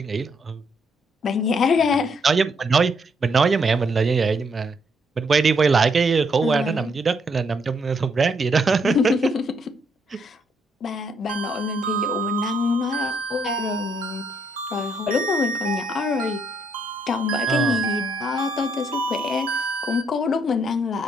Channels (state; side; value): normal; both; correlation 0.72